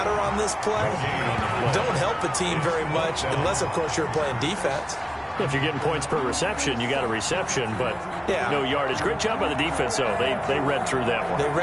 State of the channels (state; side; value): identical; both; correlation 1.00